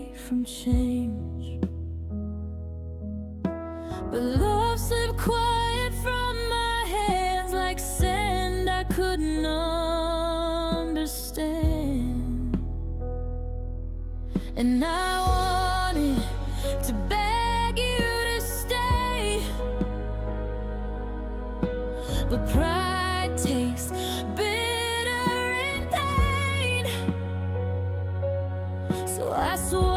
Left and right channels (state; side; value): identical; both; correlation 1.00